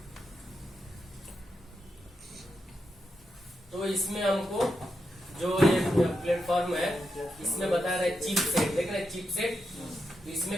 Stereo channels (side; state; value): both; normal; correlation 0.86